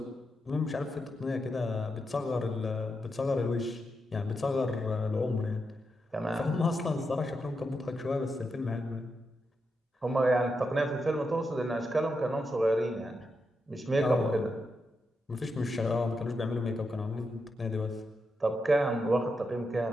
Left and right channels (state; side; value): normal; both; correlation 0.85